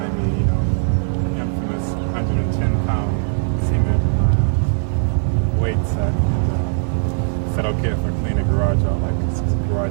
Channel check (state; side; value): silent; left; digital silence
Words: me, you know, the infamous 110-pound cement weight set, and said, okay, if I clean the garage out, like, 'cause the